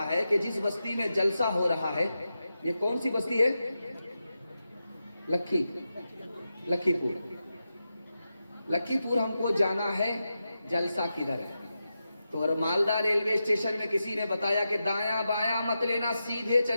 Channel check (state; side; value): inverted; both; correlation -0.90